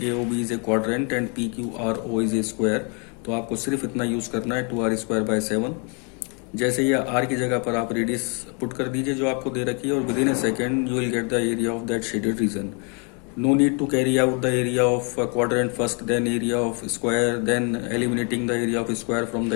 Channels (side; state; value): right; quieter; 35.7 dB